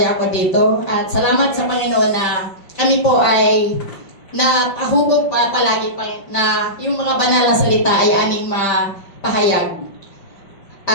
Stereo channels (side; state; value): right; late; 5.1 ms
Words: ko dito. At salamat sa Panginoon na kami po ay napahubog pa palagi pa na yung mga banal na salita ay aming mapahayag.